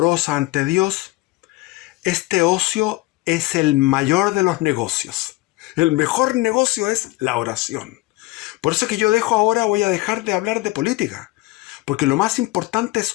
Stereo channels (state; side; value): quieter; right; 20.3 dB